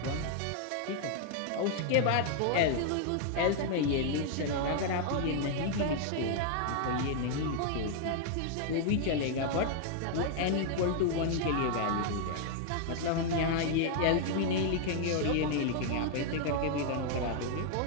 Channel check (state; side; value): different; both; correlation 0.00